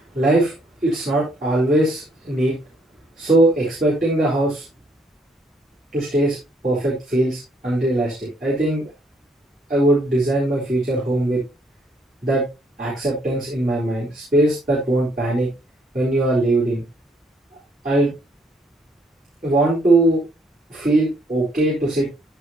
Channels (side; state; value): both; normal; correlation 0.68